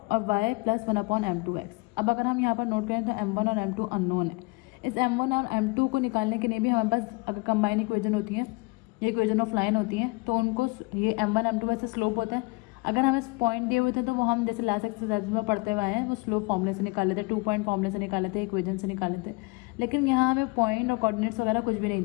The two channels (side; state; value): right; quieter; 26.8 dB